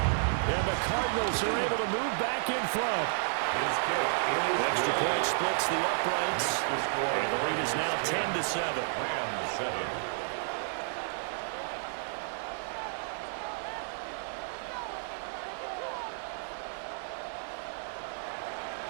And the Cardinals are able to move back in front. Extra point splits the uprights. And the lead is now 10-7. Rams 7.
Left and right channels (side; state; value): left; silent; 57 dB below the other